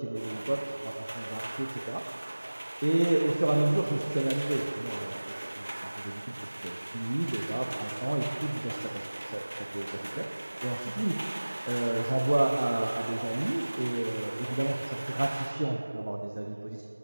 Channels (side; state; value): both; inverted; correlation -1.00